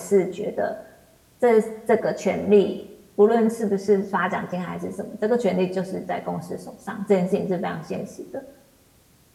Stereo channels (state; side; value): identical; both; correlation 1.00